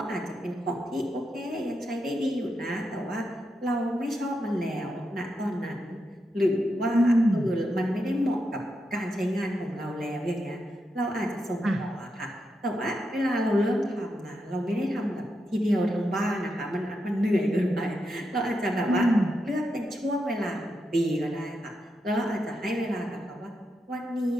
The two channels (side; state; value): both; normal; correlation 0.85